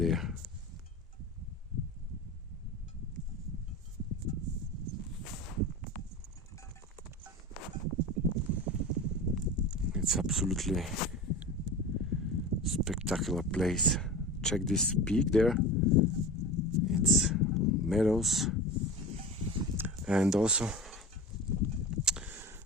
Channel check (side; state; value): both; normal; correlation 0.31